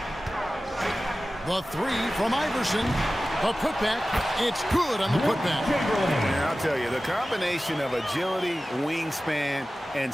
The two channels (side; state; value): both; normal; correlation 0.96